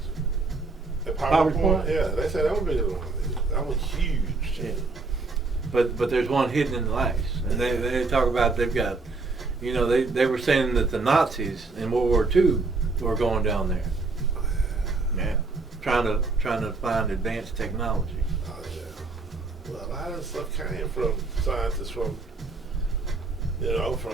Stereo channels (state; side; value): quieter; left; 3.8 dB